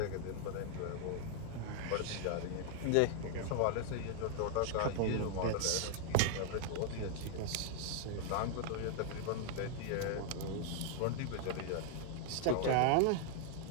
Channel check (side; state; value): both; different; correlation 0.00